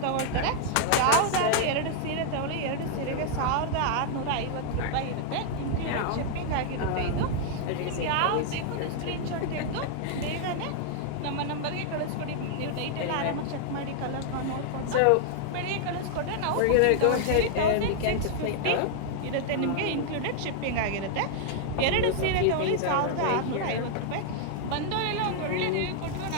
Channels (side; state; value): both; different; correlation 0.00